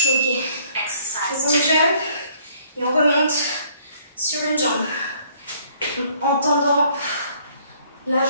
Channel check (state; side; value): inverted; both; correlation -0.62